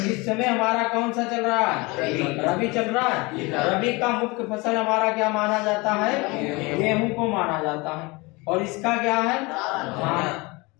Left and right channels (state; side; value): quieter; right; 25.2 dB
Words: इस समय हमारा कौन सा चल रहा है, रबी चल रहा है। रबी का मुख्य फसल हमारा क्या माना जाता है, गेहूं को माना जाता है। और इसका क्या है, धान।